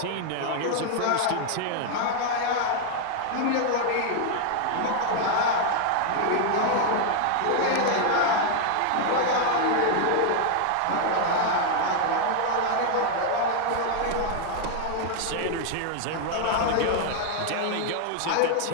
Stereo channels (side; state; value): both; different; correlation 0.00